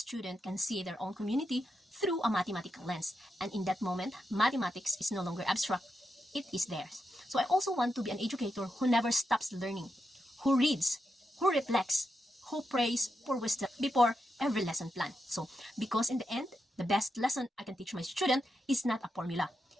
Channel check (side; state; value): both; normal; correlation 0.85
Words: can see their own community through a mathematical lens. And in that moment, mathematics is no longer abstract, it is theirs. So I also want to be an educator who never stops learning, who reads, who reflects, who prays for wisdom before every lesson plan. So, because in the end, the best lesson I can teach my student is not a formula.